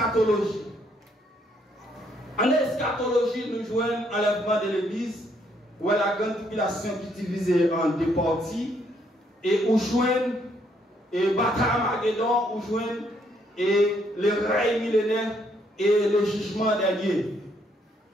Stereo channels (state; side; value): normal; both; correlation 0.70